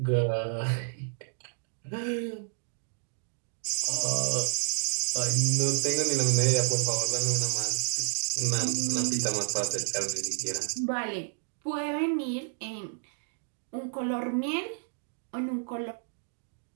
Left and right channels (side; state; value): left; silent; digital silence